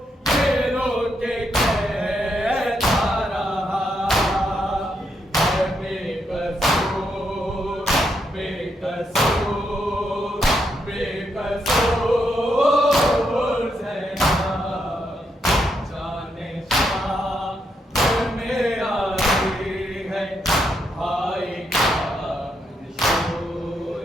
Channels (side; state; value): both; normal; correlation 0.79